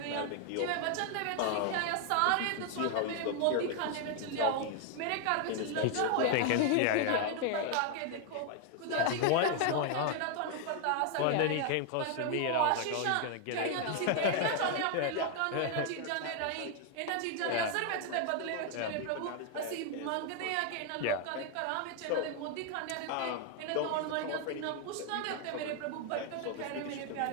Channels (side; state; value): both; different; correlation 0.00